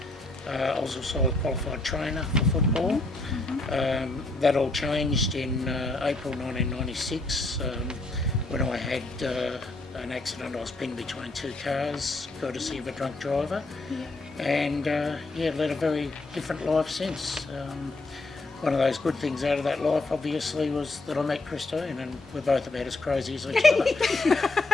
I was also a qualified trainer for football. That all changed in April 1996 when I had an accident. I was pinned between two cars, courtesy of a drunk driver, and led a very different life since. One of those good things out of that life, obviously, was that I met Christine, and we're both about as crazy as each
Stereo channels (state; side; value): quieter; right; 3.0 dB